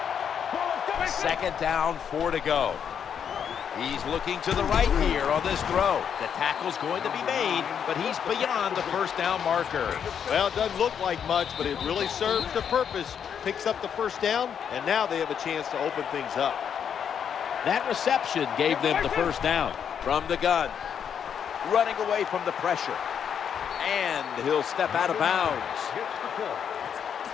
Second down, 4 to go. He's looking to the right here on this throw. The tackle's going to be made, but he's beyond the first down marker. Well, it doesn't look like much, but it really serves the purpose. Picks up the first down, and now they have a chance to open things up. That reception gave them the first down. From the gun, running away from the pressure. And he'll step out of bounds. Hits the ball.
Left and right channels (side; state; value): right; quieter; 7.9 dB